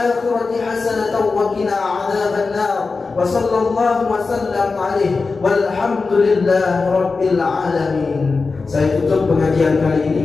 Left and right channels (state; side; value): quieter; right; 4.2 dB